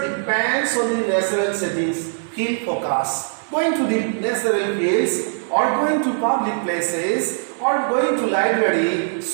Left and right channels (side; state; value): left; silent; digital silence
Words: depends on the natural settings, field focus. Going to the natural fields, or going to public places, or going to library,